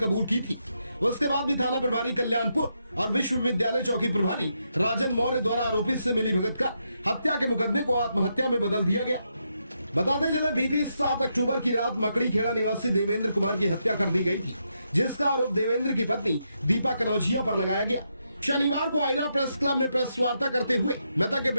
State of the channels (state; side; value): inverted; both; correlation -0.81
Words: की थी। उसके बाद भी थाना प्रभारी कल्याणपुर और विश्वविद्यालय चौकी प्रभारी राजन मौर्य द्वारा आरोपी से मिलीभगत कर हत्या के मुकदमे को आत्महत्या में बदल दिया गया। बताते चले बीती 7 अक्टूबर की रात मकड़ी खेड़ा निवासी देवेंद्र कुमार की हत्या कर दी गई थी, जिसका आरोप देवेंद्र की पत्नी दीपा कनौजिया पर लगाया गया। शनिवार को आयरा प्रेस क्लब में प्रेस वार्ता करते हुए मृतक के